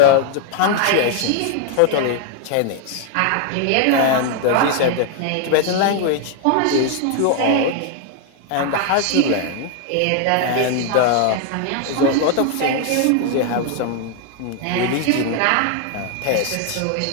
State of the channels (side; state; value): both; different; correlation 0.00